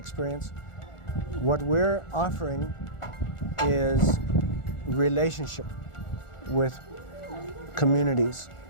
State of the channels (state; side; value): late; right; 1.4 ms